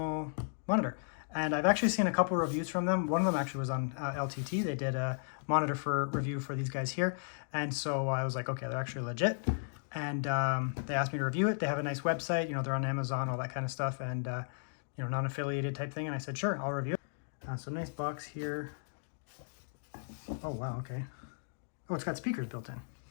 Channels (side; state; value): right; silent; digital silence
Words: monitor. And I've actually seen a couple of reviews from them. One of them actually was on LTT. They did a monitor for review for these guys here. And so I was like, okay, they're actually legit. And they asked me to review it. They have a nice website, you know, they're on Amazon, all that kind of stuff. And, you know, non-affiliated type thing. And I said, sure, I'll review it. So nice box here. Oh, wow, okay. Oh, it's got speakers built in.